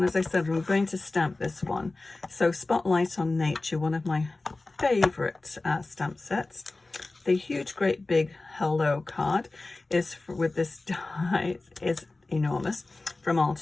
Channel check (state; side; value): quieter; right; 3.2 dB